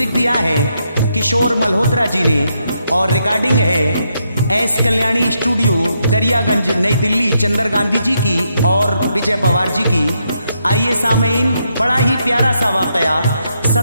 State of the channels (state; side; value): inverted; both; correlation -0.79